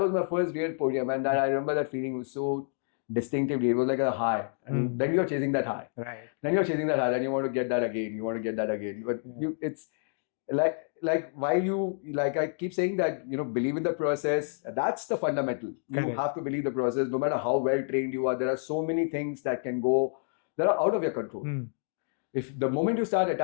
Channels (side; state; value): right; silent; digital silence